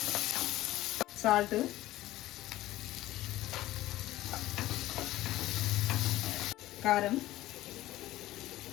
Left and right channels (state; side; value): quieter; right; 16.0 dB